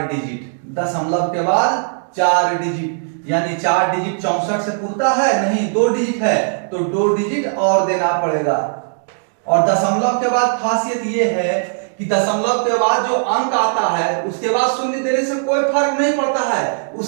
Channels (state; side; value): silent; left; digital silence